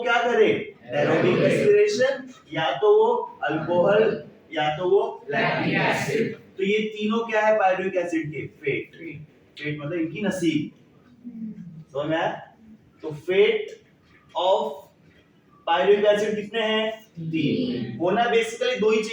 क्या करे, एरोबिक रेस्पिरेशन, या तो वो अल्कोहल, या तो वो लैक्टिक एसिड। तो ये तीनों क्या है पायरुविक एसिड के, फेट। फेट मतलब इनकी नसीब, समझ में आया। तो फेट ऑफ पायरुविक एसिड कितने हैं, 3। होना बेसिकली 2 ही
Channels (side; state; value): both; identical; correlation 1.00